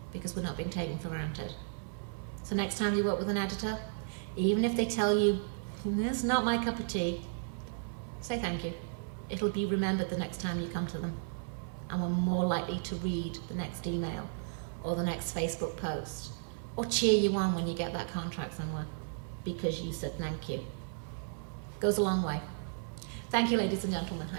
because we're not being taken for granted. So next time you work with an editor, even if they tell you, this is not my cup of tea, say thank you. It'll be remembered the next time you come to them, and we're more likely to read the next email or the next Facebook post or cheer you on when you get that contract somewhere because you said thank you. Goes a long way. Thank you, ladies and gentlemen.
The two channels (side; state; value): left; silent; 55 dB below the other